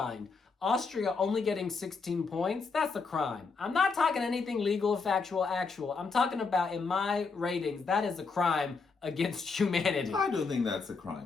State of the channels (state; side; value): quieter; right; 4.6 dB